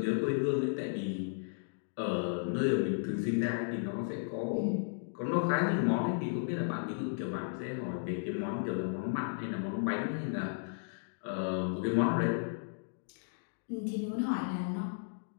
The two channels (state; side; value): silent; right; digital silence